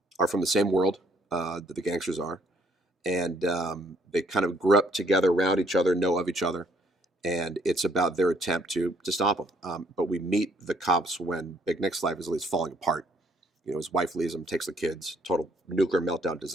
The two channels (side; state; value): both; normal; correlation 0.65